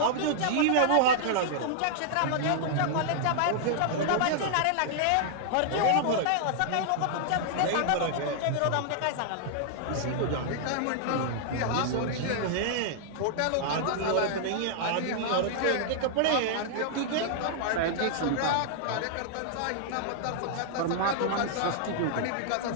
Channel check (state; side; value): different; both; correlation -0.01